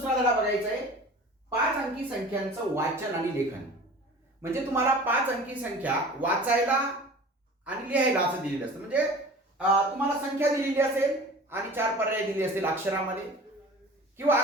धडा बघायचा आहे. 5 अंकी संख्यांचं वाचन आणि लेखन. म्हणजे तुम्हाला 5 अंकी संख्या वाचायला आणि लिहायला असं दिलेलं असतं. म्हणजे तुम्हाला संख्या दिलेली असेल आणि 4 पर्याय दिले असतील अक्षरामध्ये, किंवा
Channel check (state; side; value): normal; both; correlation 0.41